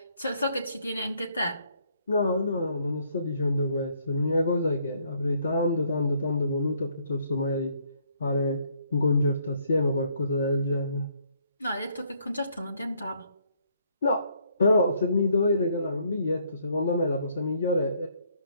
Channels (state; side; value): inverted; both; correlation -0.68